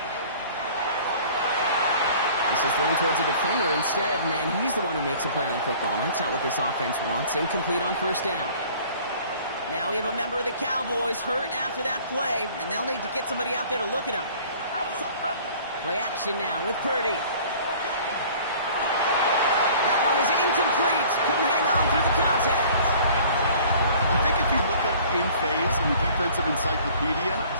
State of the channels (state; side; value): inverted; both; correlation -0.50